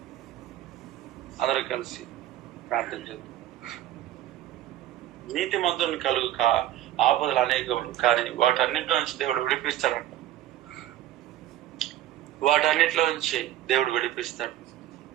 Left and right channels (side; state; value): left; quieter; 13.0 dB